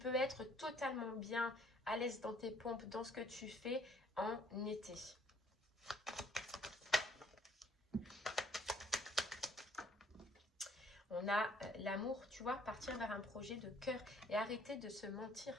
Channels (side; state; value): both; normal; correlation 0.61